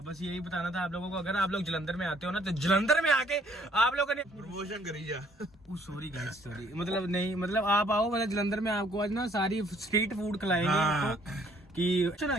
बस यही बताना था आप लोगों को। अगर आप लोग जलंधर में आते हो ना, तो जलंधर में आके आप लोगों ने प्रमोशन करी जा। सॉरी गाइस, सॉरी, मतलब नहीं, मतलब आप आओ, मतलब जलंधर में आपको आज ना सारी स्ट्रीट फूड खिलाएंगे। हाँ। आपको कि चलो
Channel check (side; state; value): both; normal; correlation 0.63